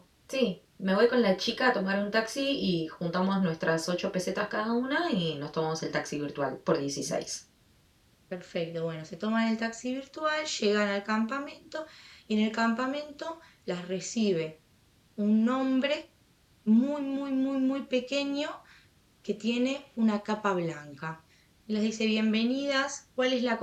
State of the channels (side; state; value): both; identical; correlation 1.00